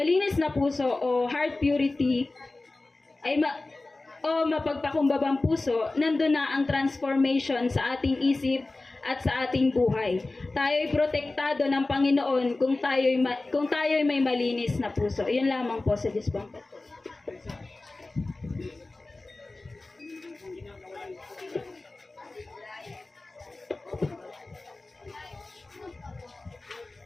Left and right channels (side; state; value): right; quieter; 3.2 dB